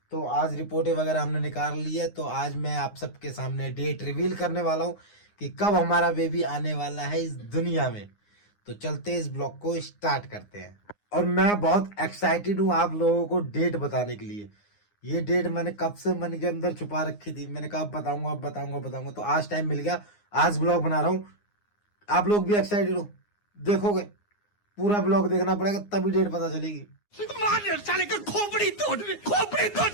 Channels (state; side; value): late; right; 9.7 ms